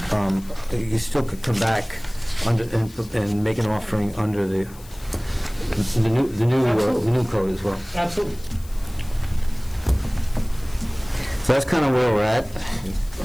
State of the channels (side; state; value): left; noise; hiss, 22 dB below the sound